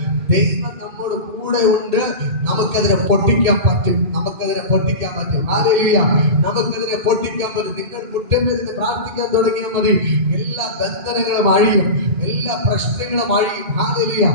ദൈവം നമ്മോട് കൂടെ ഉണ്ട്. നമുക്കതിനെ പൊട്ടിക്കാൻ പറ്റും. ഹല്ലേലൂയ. നമുക്കതിനെ പൊട്ടിക്കാൻ പറ്റും. നിങ്ങൾ മുറ്റമേന്ന് പ്രാർത്ഥിക്കാൻ തുടങ്ങിയാൽ മതി. എല്ലാ ബന്ധനങ്ങളും അഴിയും, എല്ലാ പ്രശ്നങ്ങളും അഴിയും. ഹല്ലേലൂയ.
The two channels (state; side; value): late; left; 2.4 ms